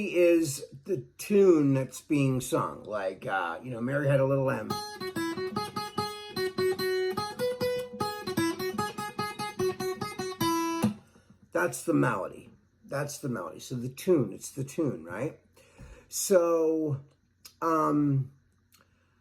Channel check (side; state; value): both; identical; correlation 1.00